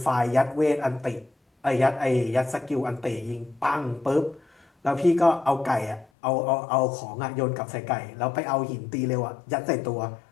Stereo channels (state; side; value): drops out; right; at 6.1 s